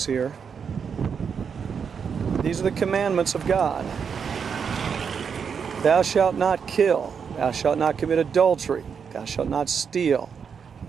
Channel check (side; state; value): left; quieter; 6.6 dB